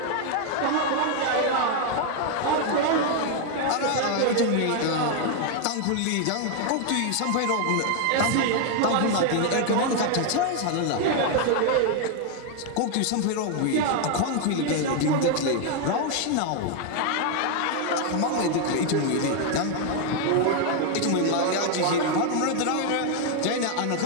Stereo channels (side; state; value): both; different; correlation 0.01